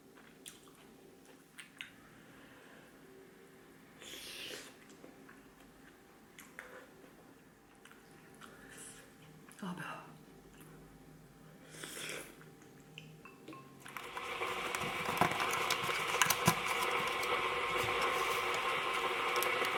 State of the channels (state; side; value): identical; both; correlation 1.00